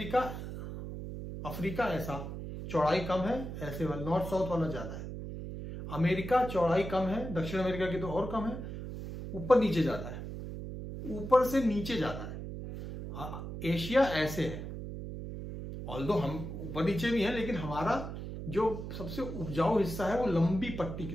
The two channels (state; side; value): noise; right; hum, 8 dB below the sound